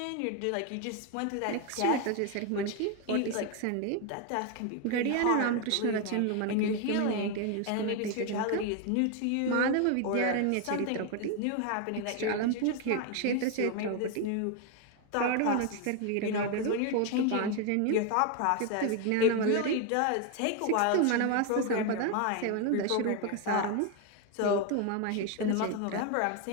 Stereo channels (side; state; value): both; different; correlation 0.01